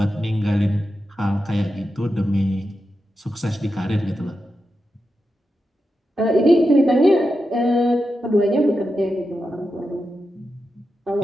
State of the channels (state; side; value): normal; both; correlation 0.89